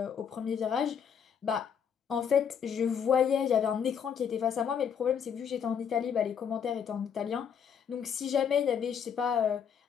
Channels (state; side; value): quieter; right; 7.6 dB